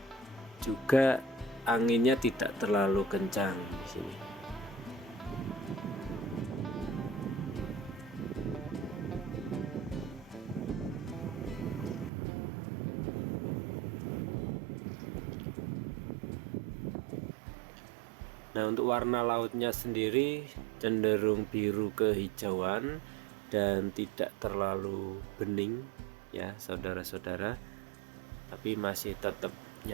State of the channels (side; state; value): left; drops out; at 12.1 s